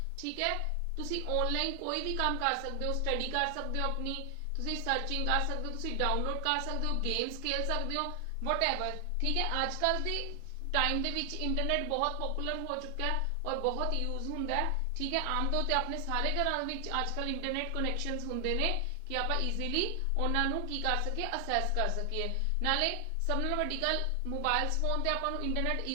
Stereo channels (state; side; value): different; both; correlation 0.00